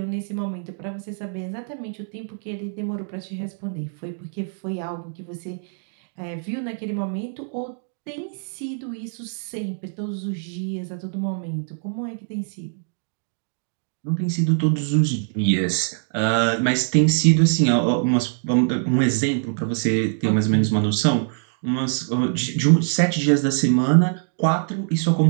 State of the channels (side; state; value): left; silent; digital silence